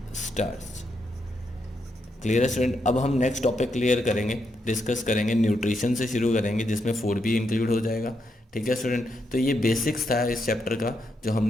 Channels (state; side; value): normal; both; correlation 0.81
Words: starch. Clear है स्टूडेंट? अब हम नेक्स्ट टॉपिक क्लियर करेंगे, डिस्कस करेंगे, न्यूट्रिशन से शुरू करेंगे जिसमें फूड भी इंक्लूड हो जाएगा। ठीक है स्टूडेंट, तो ये बेसिक्स था इस चैप्टर का जो